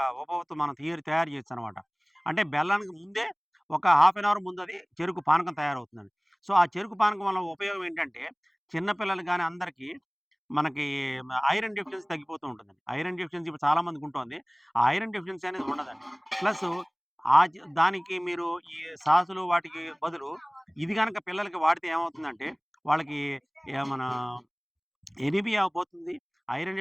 ఉపవత్తు మనం తయారు చేయొచ్చనమాట. అంటే బెల్లానికి ముందే ఒక హాఫ్ అన్ అవర్ ముందది చెరుకు పానకం తయారవుతుందండి. సో, ఆ చెరుకు పానకం వల్ల ఉపయోగం ఏంటంటే, చిన్న పిల్లలు గాని అందరికీ మనకి ఐరన్ డెఫిషియన్సీ తగ్గిపోతూ ఉంటుందండి. ఐరన్ డెఫిషియన్సీ ఇప్పుడు చాలా మందికుంటోంది. ఆ ఐరన్ డెఫిషియన్సీ అనేది ఉండదండి. ప్లసు దానికి మీరు ఈ సాసులు వాటికి బదులు ఇది గనక పిల్లలకి వాడితే ఏమవుతుందంటే, వాళ్ళకి మన ఎనీమియా పోతుంది. Iron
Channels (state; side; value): identical; both; correlation 1.00